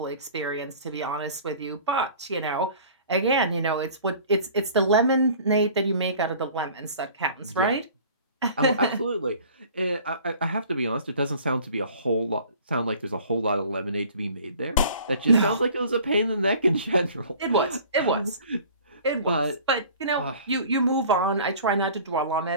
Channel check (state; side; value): inverted; both; correlation -0.47